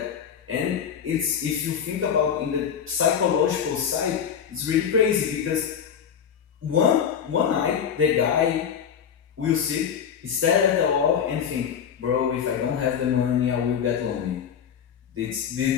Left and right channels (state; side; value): quieter; right; 7.9 dB